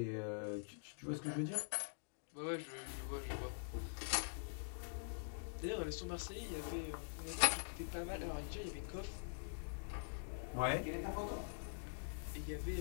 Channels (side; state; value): right; silent; digital silence